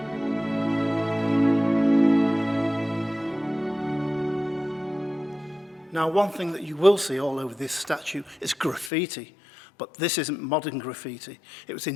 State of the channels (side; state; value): right; drops out; at 8.9 s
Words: Now, one thing that you will see all over this statue is graffiti, but this isn't modern graffiti. It was